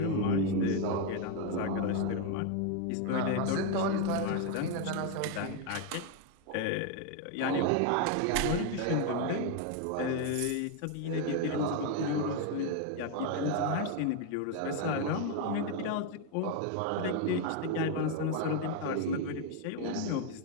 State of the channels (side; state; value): both; different; correlation 0.01